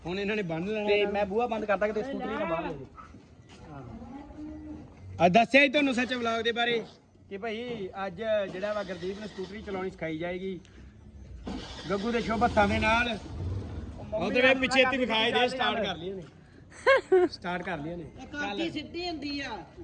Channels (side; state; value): both; identical; correlation 1.00